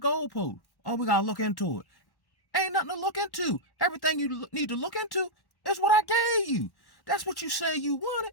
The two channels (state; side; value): late; right; 1.1 ms